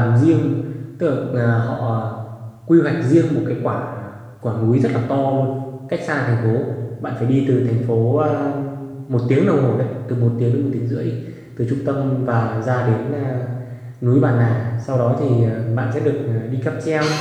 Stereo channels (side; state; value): both; identical; correlation 1.00